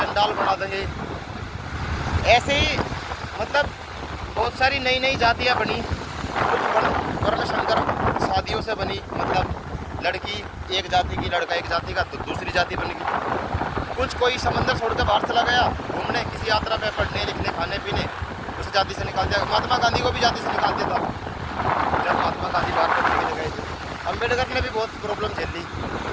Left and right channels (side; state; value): both; identical; correlation 1.00